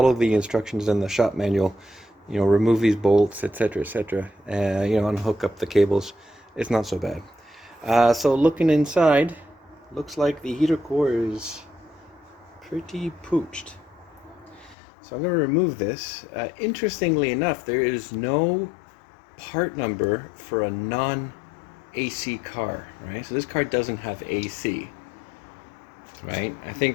the instructions in the shop manual, remove these bolts, etc., etc., unhook up the cables, it's not so bad. So looking inside, looks like the heater core is pretty pooched. So I'm going to remove this. Interestingly enough, there is no part number for a non-AC car, right? So this car doesn't have AC, right? I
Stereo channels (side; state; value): right; drops out; at 14.8 s